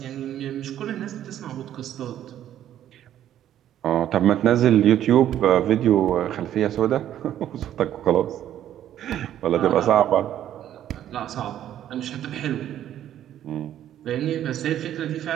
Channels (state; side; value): quieter; left; 11.4 dB